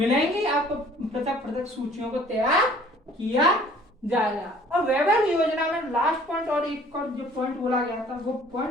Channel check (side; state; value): both; normal; correlation 0.54